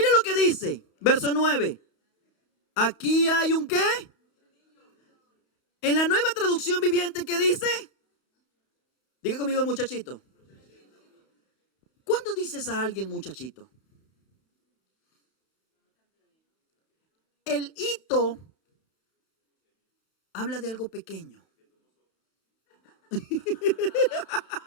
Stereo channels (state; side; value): late; right; 31 ms